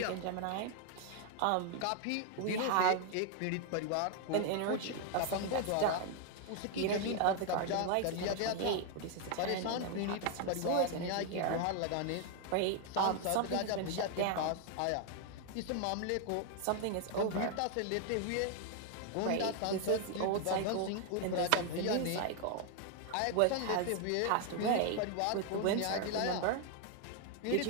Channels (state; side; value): different; both; correlation 0.00